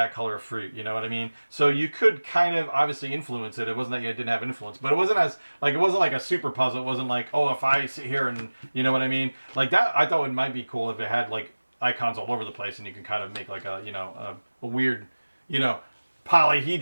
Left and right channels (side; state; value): both; inverted; correlation -1.00